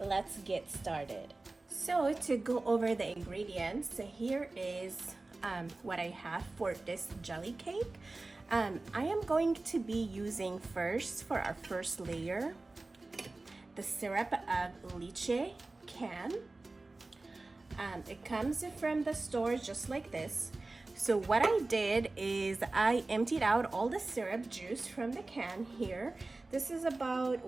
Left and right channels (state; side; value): quieter; left; 3.2 dB